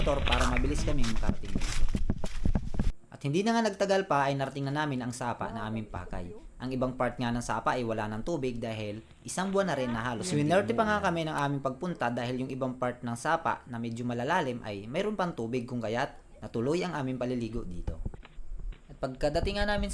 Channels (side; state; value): both; identical; correlation 1.00